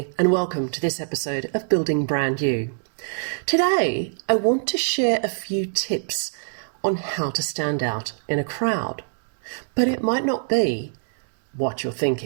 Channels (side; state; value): left; silent; digital silence